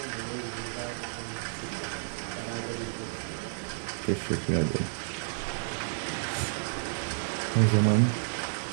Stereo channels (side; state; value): left; silent; 57 dB below the other